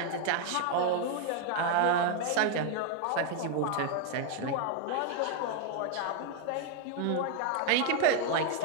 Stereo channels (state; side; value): different; both; correlation 0.00